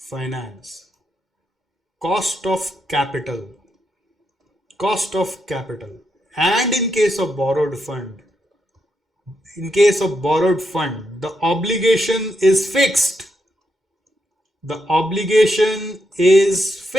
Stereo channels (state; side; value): normal; both; correlation 0.82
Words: finance, cost of capital, cost of capital. And in case of borrowed fund, the obligation is fixed. The obligation is